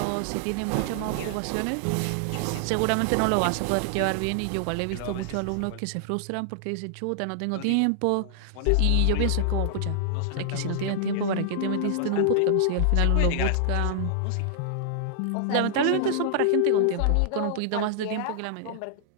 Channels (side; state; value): both; different; correlation -0.01